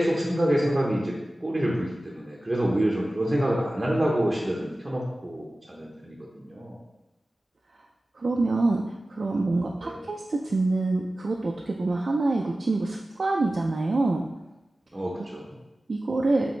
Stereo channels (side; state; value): both; normal; correlation 0.96